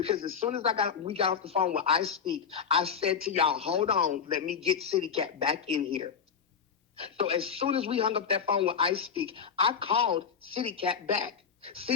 as soon as we got off the phone with I Speak, I said to y'all, hold on, let me get City Cat back in here. So as soon as we hung up that phone with I Speak, I called City Cat back.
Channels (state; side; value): quieter; right; 6.8 dB